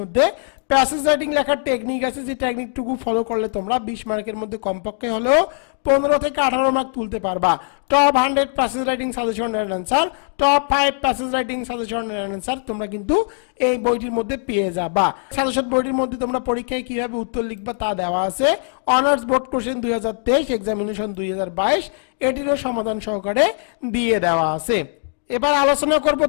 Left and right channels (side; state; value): right; silent; 62 dB below the other